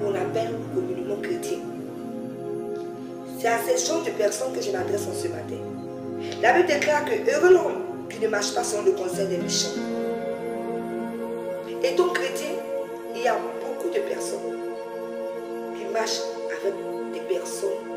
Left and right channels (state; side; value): identical; both; correlation 1.00